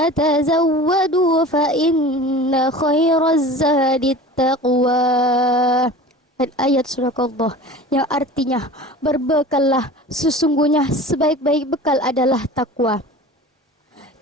tazawwadu fa inna khairaz zadit taqwa. Dan ayat Sadaqallah yang artinya, berbekallah, sesungguhnya sebaik-baik bekal adalah takwa.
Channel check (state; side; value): normal; both; correlation 0.38